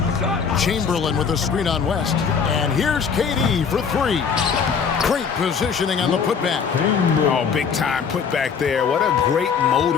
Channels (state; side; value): quieter; right; 6.3 dB